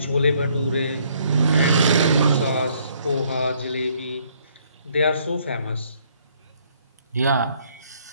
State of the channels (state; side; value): inverted; both; correlation -0.66